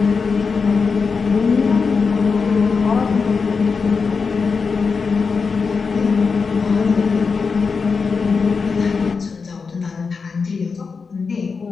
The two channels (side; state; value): right; quieter; 5.0 dB